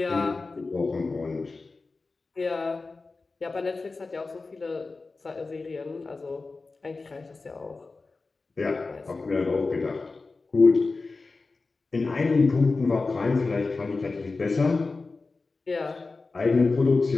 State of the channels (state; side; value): quieter; right; 3.8 dB